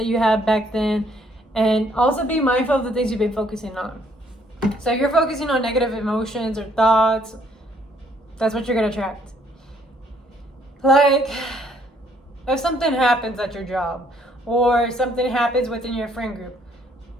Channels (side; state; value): both; normal; correlation 0.66